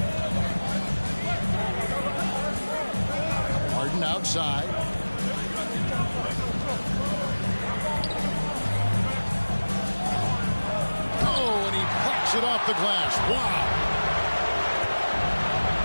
Harden outside. Oh, and he plucks it off the glass. Wow.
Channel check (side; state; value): both; inverted; correlation -1.00